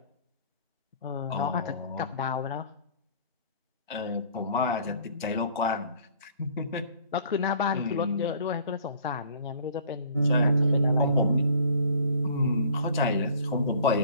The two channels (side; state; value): both; inverted; correlation -0.52